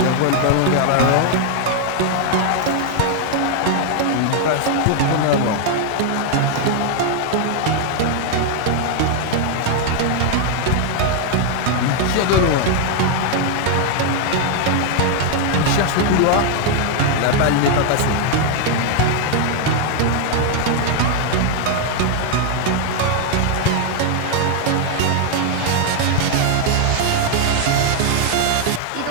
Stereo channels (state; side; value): different; both; correlation 0.00